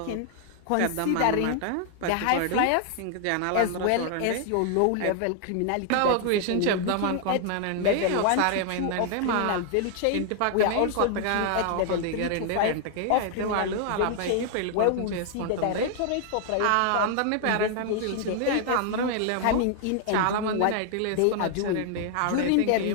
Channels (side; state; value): both; different; correlation 0.00